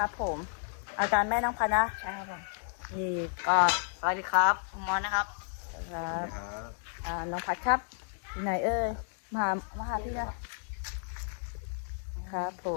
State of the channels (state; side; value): silent; right; digital silence